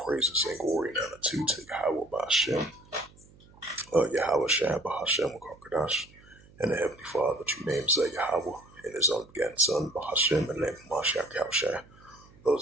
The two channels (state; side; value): noise; right; hum, 25 dB below the sound